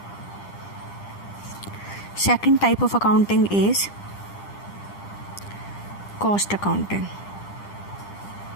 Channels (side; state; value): right; late; 10 ms